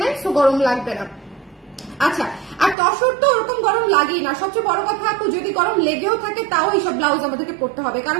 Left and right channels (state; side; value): drops out; left; at 2.8 s